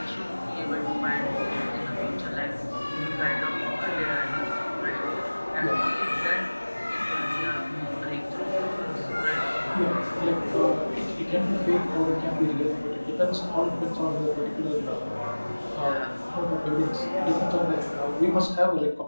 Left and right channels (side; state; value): both; inverted; correlation -1.00